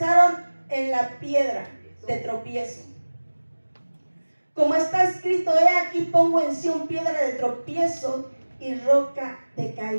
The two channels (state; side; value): inverted; both; correlation -1.00